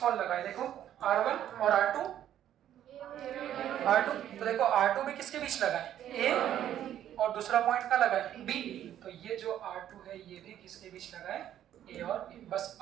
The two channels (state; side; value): quieter; left; 11.1 dB